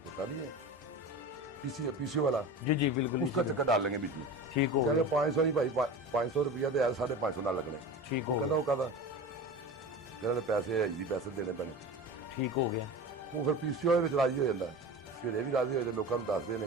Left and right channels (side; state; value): both; normal; correlation 0.31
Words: ہوتا نہیں ہے پی سی او والا, جی جی بالکل, اس کا چکر ڈال لیں گے بیچ میں. ٹھیک ہو کہ 500 نہیں بھائی 500 روپیہ دے 550 نہ لگنے. ٹھیک وہ ہو کہنا وہ کہتا کہ پیسے ایزی پیسے دینے پینے. ٹھیک ہو گیا. وہ پھر پی سی او ਵਿੱਚ راضی ہو ਜਾਂਦਾ ہے, پھر یہ بھی راضی ہو جائے, لوگوں ਨੂੰ ਦੱਸਦੇ